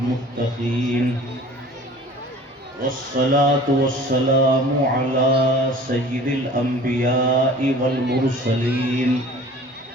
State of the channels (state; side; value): normal; both; correlation 0.45